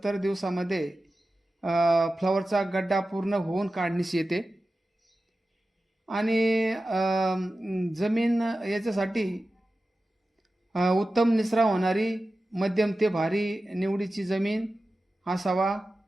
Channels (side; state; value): both; normal; correlation 0.94